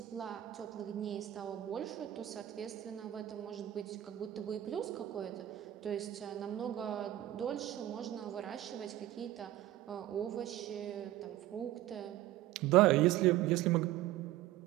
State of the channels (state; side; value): quieter; left; 14.0 dB